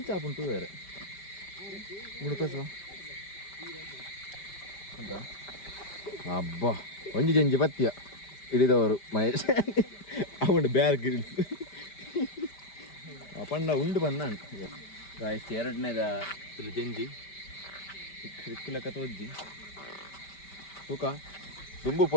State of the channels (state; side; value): late; right; 5.1 ms